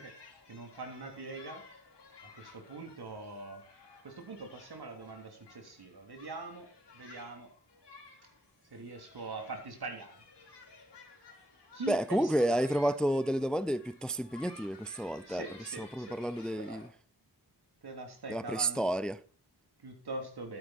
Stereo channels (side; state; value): both; normal; correlation 0.74